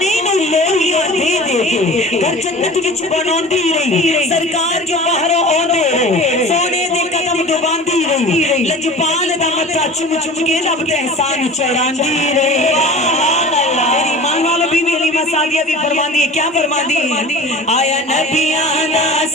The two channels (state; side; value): normal; both; correlation 0.39